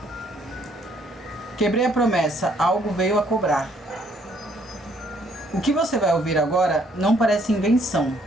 quebrei a promessa, algo veio a cobrar. O que você vai ouvir agora não parece invenção.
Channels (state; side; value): normal; both; correlation 0.66